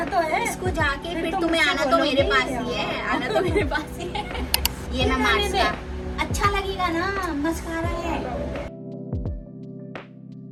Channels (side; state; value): both; identical; correlation 1.00